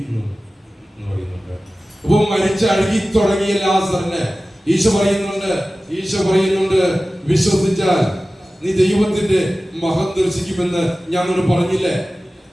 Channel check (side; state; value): both; normal; correlation 0.96